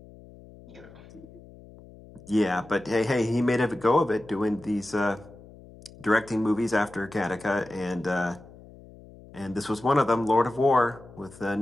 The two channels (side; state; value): left; noise; hum, 21 dB below the sound